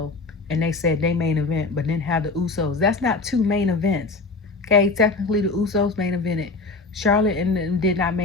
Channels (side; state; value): right; quieter; 3.8 dB